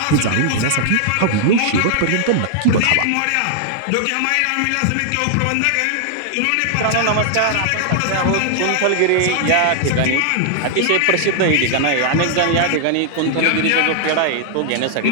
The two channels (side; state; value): both; different; correlation 0.00